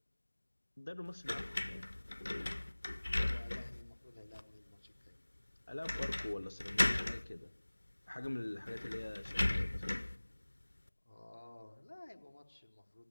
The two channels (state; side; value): inverted; both; correlation -1.00